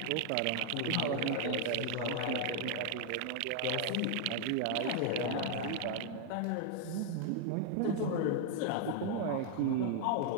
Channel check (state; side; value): different; both; correlation 0.00